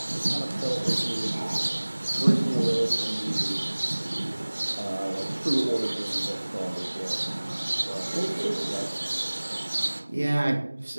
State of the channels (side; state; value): both; inverted; correlation -1.00